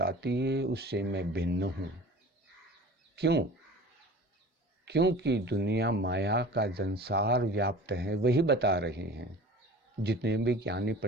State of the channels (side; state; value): both; normal; correlation 0.41